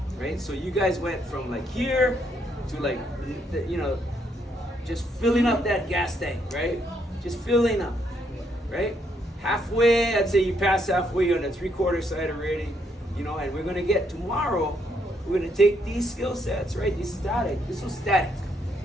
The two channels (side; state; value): both; normal; correlation 0.74